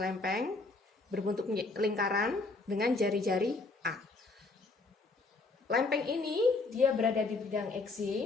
lempeng berbentuk lingkaran dengan jari-jari A. Lempeng ini dia berada di bidang X,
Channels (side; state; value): right; quieter; 3.6 dB